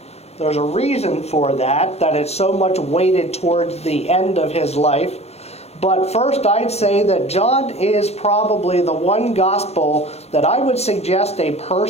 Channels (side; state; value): right; late; 0.31 ms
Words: There's a reason for that it's so much weighted towards the end of his life. But first, I'd say that John is probably the one gospel that I would suggest a